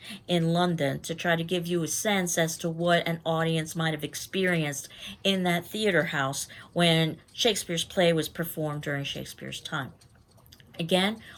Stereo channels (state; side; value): identical; both; correlation 1.00